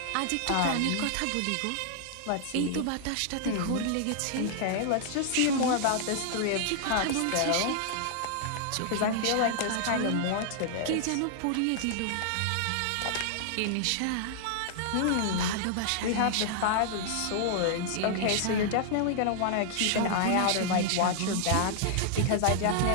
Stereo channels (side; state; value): both; different; correlation -0.01